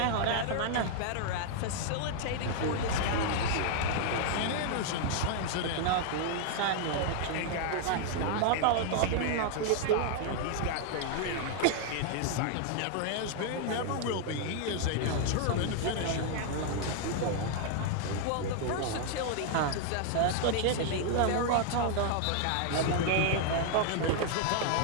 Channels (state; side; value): different; both; correlation 0.00